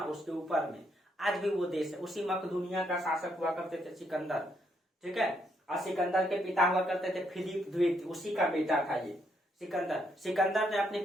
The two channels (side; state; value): both; normal; correlation 0.75